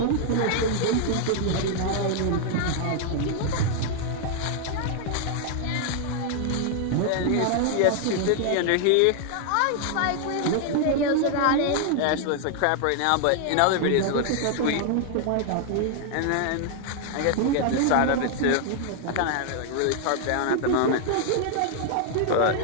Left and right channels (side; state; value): both; different; correlation 0.00